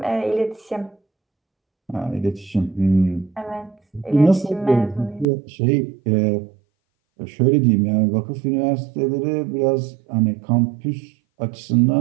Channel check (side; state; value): left; drops out; at 5.2 s